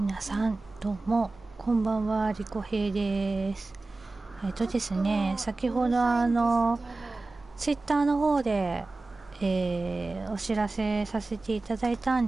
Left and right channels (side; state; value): left; quieter; 3.3 dB